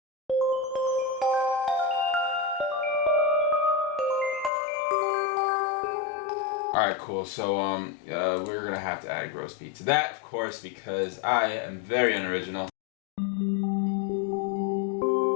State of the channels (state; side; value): drops out; right; at 4.5 s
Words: Alright, cool. So, we're gonna have to add a gross beat to that, of course, because I am very unoriginal.